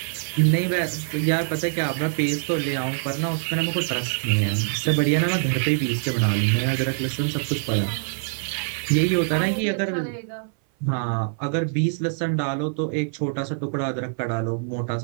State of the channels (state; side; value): silent; left; 58 dB below the other